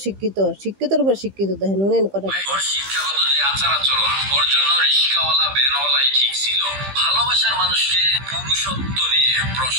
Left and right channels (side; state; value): left; late; 15 ms